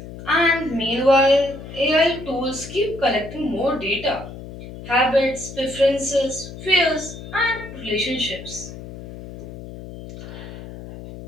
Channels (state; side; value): noise; left; hum, 13 dB below the sound